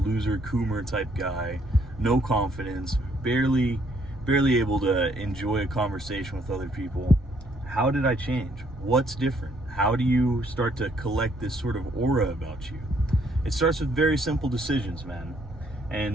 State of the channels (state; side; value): normal; both; correlation 0.68